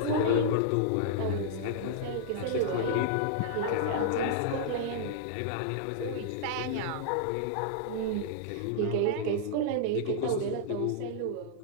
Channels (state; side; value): different; both; correlation -0.01